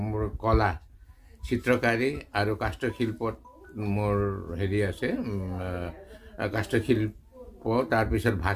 মোৰ কলা, চিত্ৰকাৰী আৰু কাষ্ঠশিল্পত মোৰ হেৰি আছে, কাষ্ঠশিল্প, তাৰপিছত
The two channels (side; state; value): both; identical; correlation 1.00